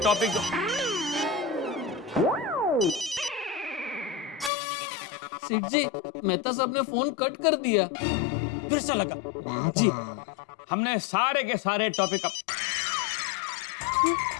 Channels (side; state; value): right; drops out; at 4.5 s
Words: सेठ जी, मेहता साहब ने फोन कट कर दिया। फिर से लगा। जी। हमने सारे के सारे टॉपिक